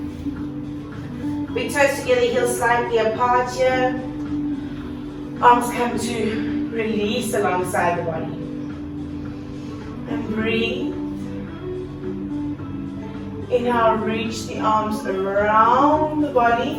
Big toes together, heels slightly apart here. Arms come to release alongside the body. And breathe. Inhale, reach the arms around the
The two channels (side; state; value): both; identical; correlation 1.00